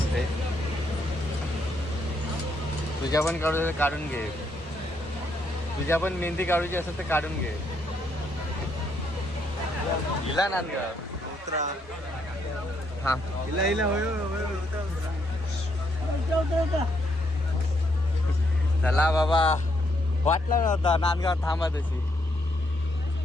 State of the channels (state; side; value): normal; both; correlation 0.75